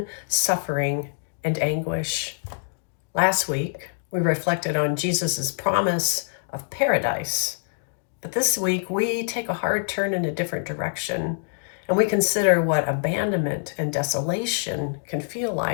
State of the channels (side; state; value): right; silent; digital silence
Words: suffering and anguish. Last week, we reflected on Jesus's promise of paradise. But this week, we take a hard turn in a different direction, and we consider what abandonment and desolation can feel